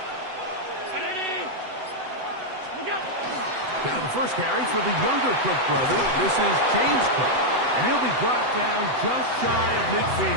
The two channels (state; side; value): late; left; 7.9 ms